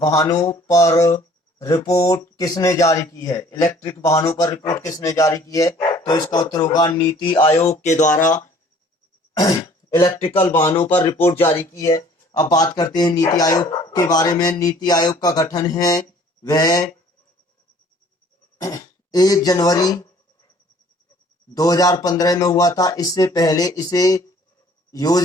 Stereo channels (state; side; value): normal; both; correlation 0.54